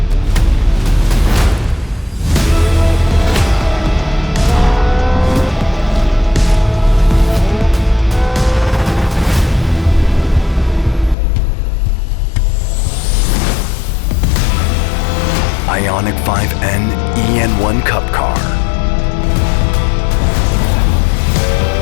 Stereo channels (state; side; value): drops out; right; at 11.2 s